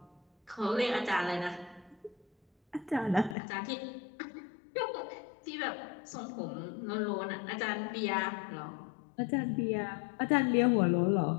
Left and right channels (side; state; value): right; drops out; at 3.4 s